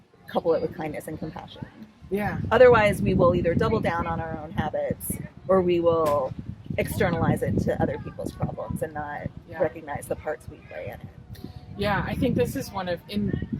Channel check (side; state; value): both; identical; correlation 1.00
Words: couple it with kindness and compassion. Otherwise, we will either double down on our own habits, or we will externalize it to other people's problems and not recognize the parts we play in it. I think this is one of,